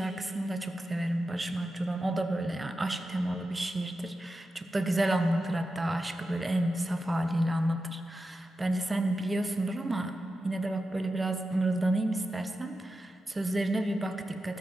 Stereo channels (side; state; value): both; normal; correlation 0.90